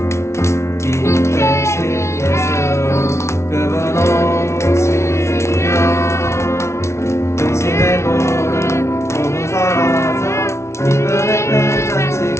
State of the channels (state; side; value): late; right; 0.13 ms